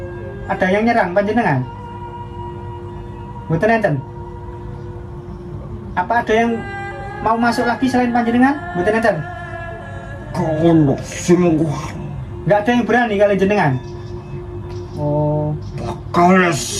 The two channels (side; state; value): both; identical; correlation 1.00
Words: Ada yang nyerang panjenengan? Mboten enten. Apa ada yang mau masuk lagi selain panjenengan? Mboten enten. kono sungguh Enggak ada yang berani kali jenengan. Oh, bakal